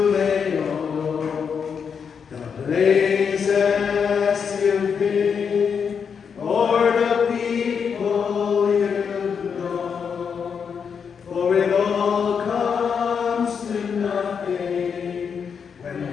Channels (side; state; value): right; quieter; 6.6 dB